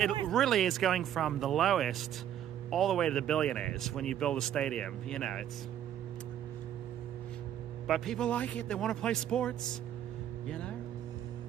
it worse. really is going from the lowest all the way to the billionaires when you build a stadium. You know, it's... But people like it. They want to play sports, you know?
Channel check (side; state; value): left; quieter; 10.6 dB